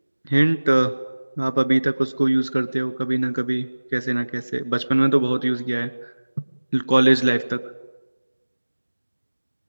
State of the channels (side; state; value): both; inverted; correlation -1.00